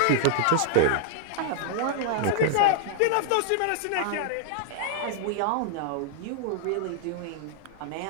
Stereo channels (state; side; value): different; both; correlation -0.01